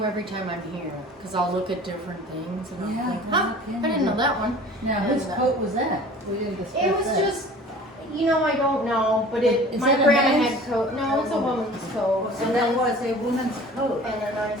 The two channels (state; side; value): normal; both; correlation 0.44